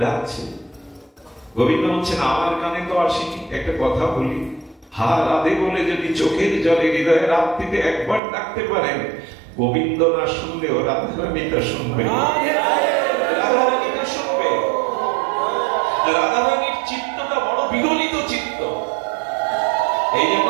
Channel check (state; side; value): drops out; left; at 8.2 s